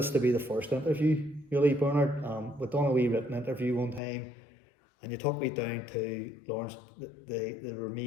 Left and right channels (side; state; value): right; drops out; at 4.0 s